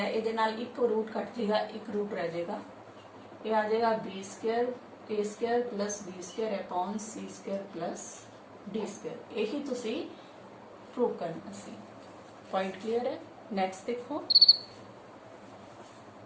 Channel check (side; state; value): both; identical; correlation 1.00